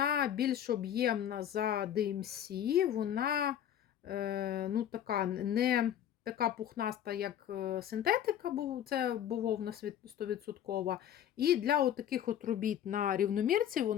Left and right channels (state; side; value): quieter; right; 10.3 dB